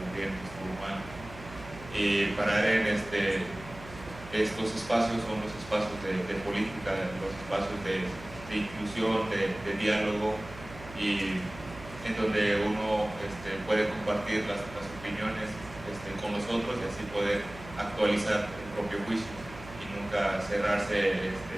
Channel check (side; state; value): right; noise; hum, 16 dB below the sound